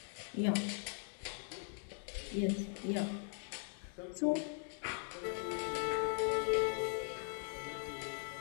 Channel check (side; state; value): right; silent; 51 dB below the other